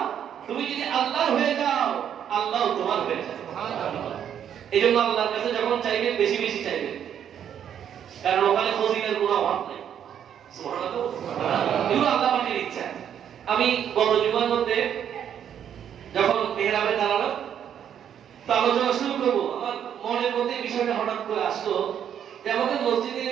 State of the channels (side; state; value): left; quieter; 9.2 dB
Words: তুমি যদি আল্লাহর হয়ে যাও, আল্লাহ তোমার হয়ে যাবে। সুবহানাল্লাহ। এইজন্য আল্লাহর কাছে যখন চাইবেন বেশি বেশি চাইবেন, কারণ ওখানে ফজিলের কোনো অভাব নেই। সুবহানাল্লাহ। এগুলো আল্লাহ পাকের ইচ্ছা। আমি গত জুমার মধ্যে যখন মেহরাবে দাঁড়ালাম, তো আলোচনা শুরু করবো, আমার মনের মধ্যে বিষয়টা হঠাৎ করে আসলো যে আমাদের মসজিদে